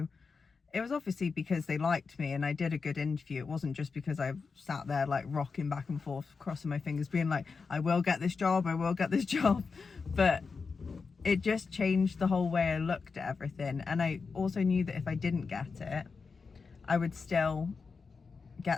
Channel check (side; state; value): right; quieter; 4.9 dB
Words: it was obviously because they liked me and I did a good interview. It wasn't just because I sat there like rocking back and forth, crossing my fingers, being like, I will get this job, I will get this job. But it just changed the whole way I looked at everything. And I also knew that if I didn't get it, I would still